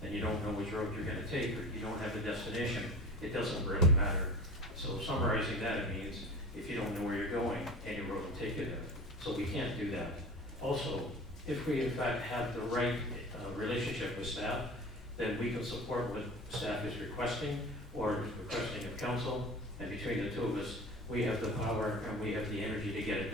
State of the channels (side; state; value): both; normal; correlation 0.36